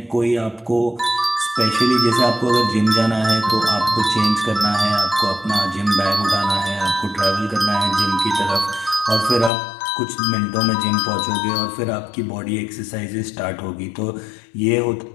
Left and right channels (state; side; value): drops out; right; at 9.5 s